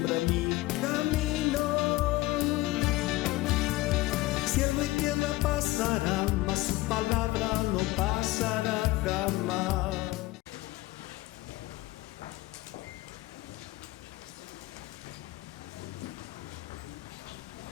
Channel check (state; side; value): quieter; right; 19.0 dB